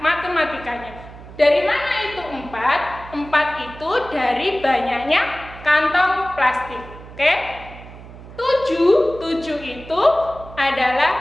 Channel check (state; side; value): noise; right; hum, 16 dB below the sound